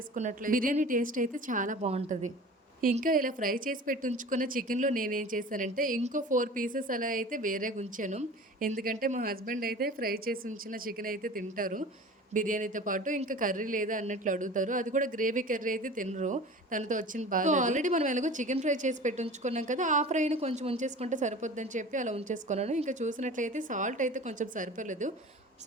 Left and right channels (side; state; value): both; normal; correlation 0.39